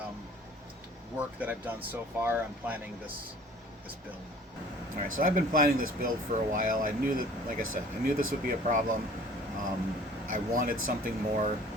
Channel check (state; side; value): normal; both; correlation 0.50